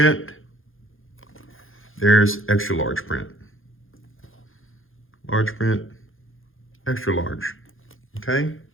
There's extra large print. Large print, extra large. Okay.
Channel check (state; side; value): late; right; 0.59 ms